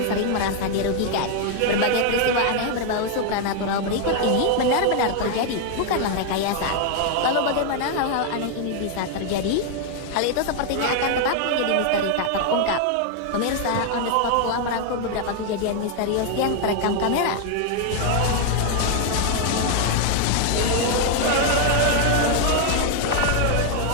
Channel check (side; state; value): both; different; correlation 0.00